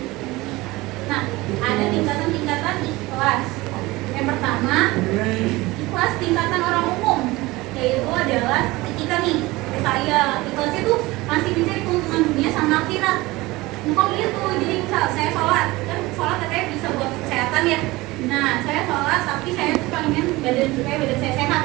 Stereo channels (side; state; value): left; quieter; 20.6 dB